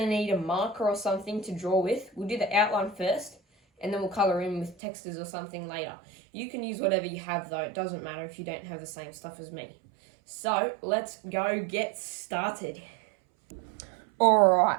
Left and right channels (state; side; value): drops out; left; at 4.8 s